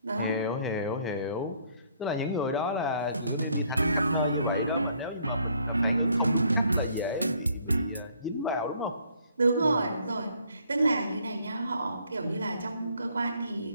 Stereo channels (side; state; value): both; inverted; correlation -0.64